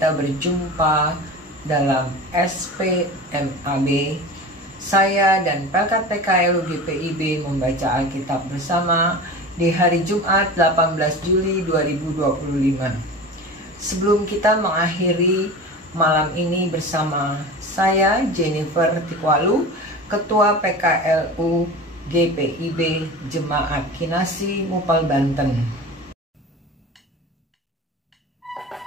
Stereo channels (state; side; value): normal; both; correlation 0.33